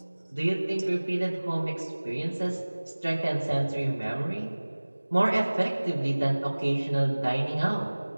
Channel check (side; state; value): both; inverted; correlation -1.00